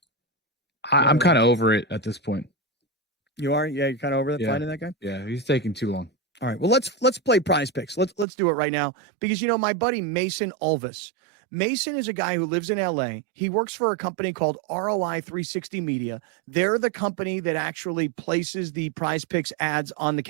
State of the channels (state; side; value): drops out; left; at 8.2 s